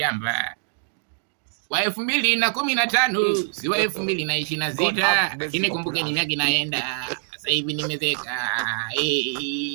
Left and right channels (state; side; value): silent; left; digital silence